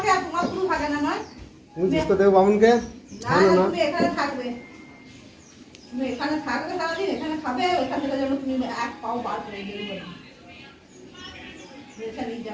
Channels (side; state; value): both; identical; correlation 1.00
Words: আর তোমার শুধু থাকে না নয়। তুমি জিজ্ঞেস দেবো বামুনকে। না না তুমি এখানে থাকবে, তুমি এখানে থাকবে সারাদিন, এখানে খাবে, ওইখান থেকে যেন তুমি এক পাও বার করে দিয়ে দেবে এখানে